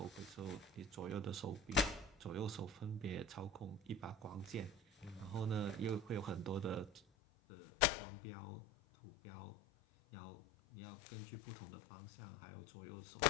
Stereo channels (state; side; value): drops out; right; at 7.0 s